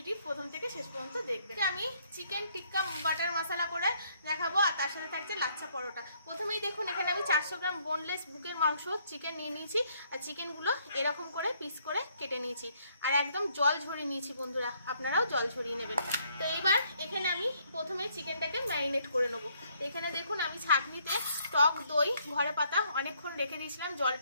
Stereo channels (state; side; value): inverted; both; correlation -0.68